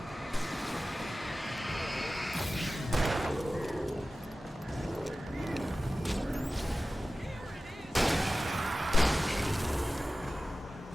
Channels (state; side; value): normal; both; correlation 0.96